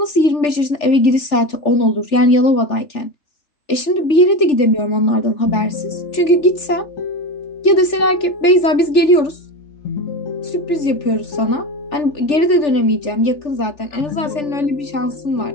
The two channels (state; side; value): late; right; 3.4 ms